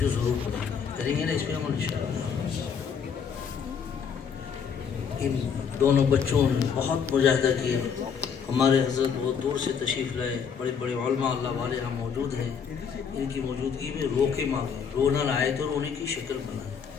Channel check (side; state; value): right; quieter; 6.8 dB